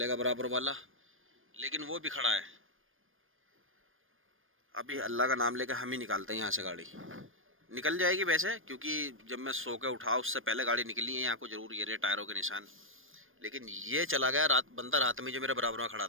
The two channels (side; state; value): left; late; 0.59 ms